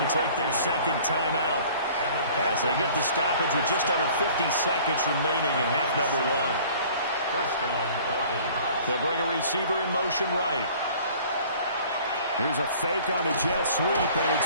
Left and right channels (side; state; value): both; inverted; correlation -0.50